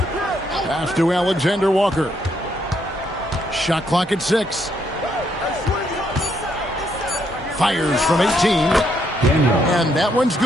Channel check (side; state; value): both; normal; correlation 0.74